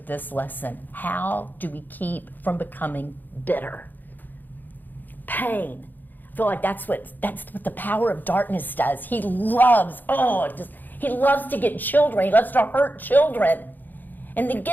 this lesson. How do we keep from becoming bitter? Pain. I feel like that's what the power of darkness does. He loves to get children. He loves to hurt children. And to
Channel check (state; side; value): late; right; 0.087 ms